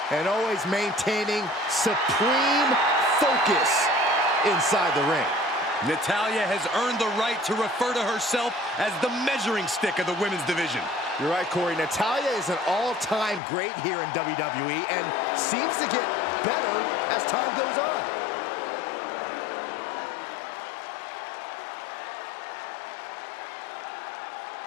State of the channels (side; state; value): right; drops out; at 13.4 s